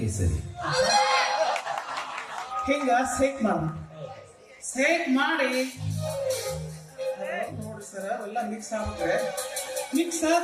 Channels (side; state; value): both; identical; correlation 1.00